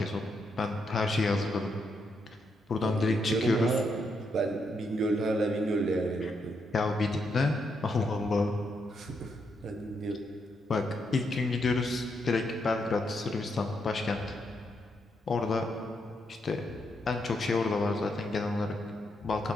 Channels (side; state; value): both; normal; correlation 0.79